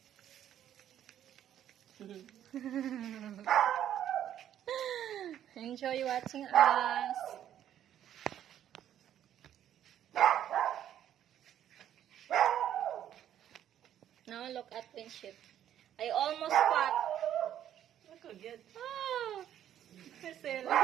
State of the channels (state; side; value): quieter; left; 10.8 dB